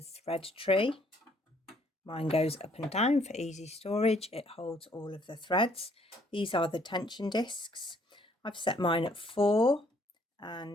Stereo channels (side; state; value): both; normal; correlation 0.64